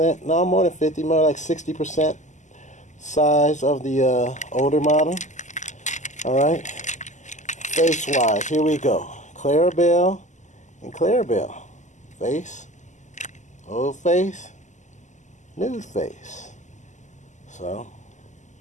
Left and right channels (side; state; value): right; late; 0.34 ms